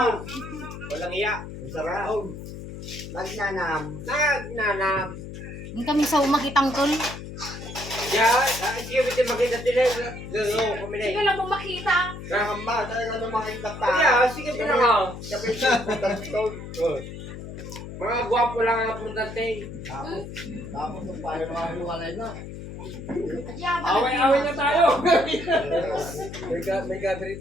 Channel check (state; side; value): noise; left; hum, 10 dB below the sound